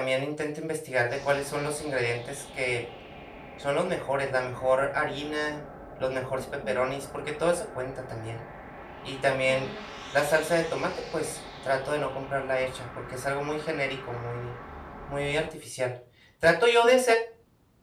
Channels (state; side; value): identical; both; correlation 1.00